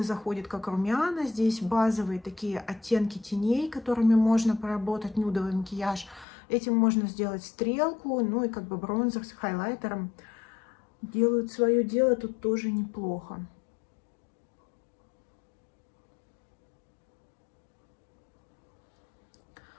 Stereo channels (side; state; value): right; drops out; at 6.2 s